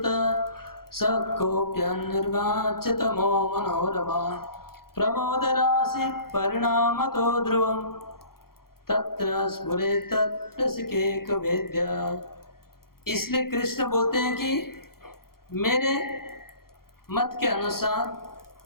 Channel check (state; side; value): late; right; 0.93 ms